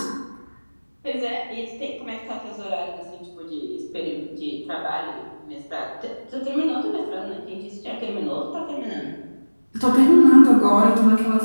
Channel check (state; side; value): inverted; both; correlation -1.00